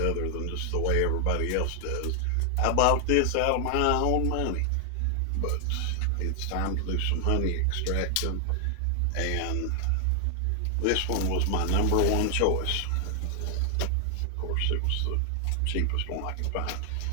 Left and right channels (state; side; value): different; both; correlation 0.00